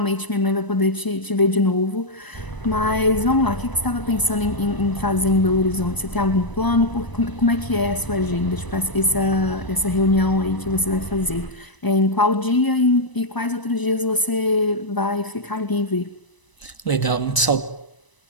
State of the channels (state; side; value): late; right; 1.0 ms